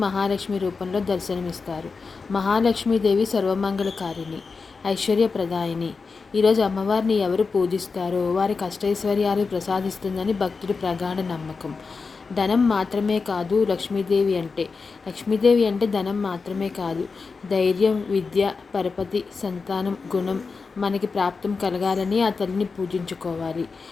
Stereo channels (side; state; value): right; quieter; 4.6 dB